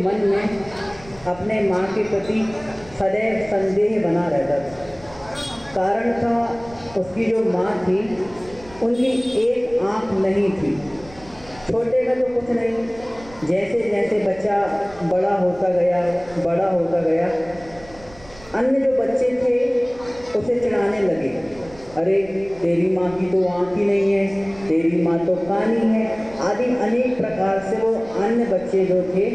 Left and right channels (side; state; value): right; noise; rumble, 22 dB below the sound